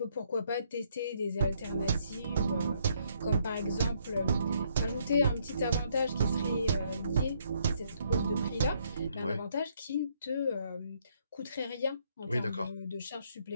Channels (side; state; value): both; inverted; correlation -0.70